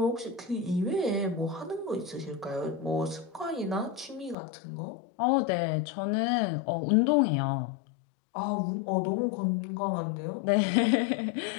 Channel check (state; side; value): drops out; right; at 4.4 s